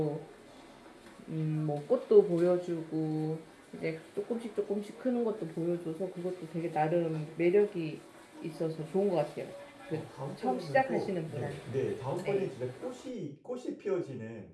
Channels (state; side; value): identical; both; correlation 1.00